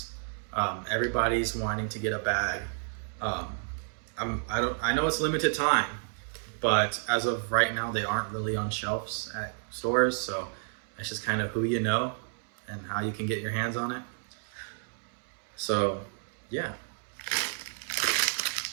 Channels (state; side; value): silent; left; 57 dB below the other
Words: Everybody's wanting to get a bag. I know it's limited time, but as of right now, they aren't really on shelves at stores, so it's just kind of who you know and how you can get your hands on it. So, yeah.